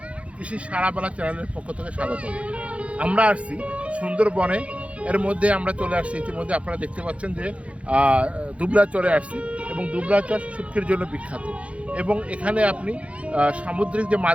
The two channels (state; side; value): late; left; 0.063 ms